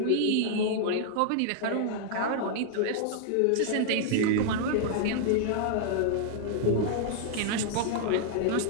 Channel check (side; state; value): both; different; correlation -0.01